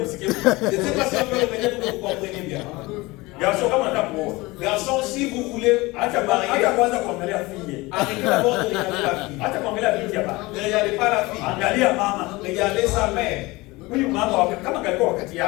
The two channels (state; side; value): quieter; right; 22.0 dB